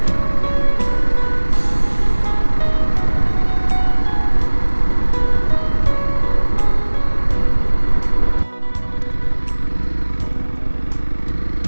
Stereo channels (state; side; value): inverted; both; correlation -1.00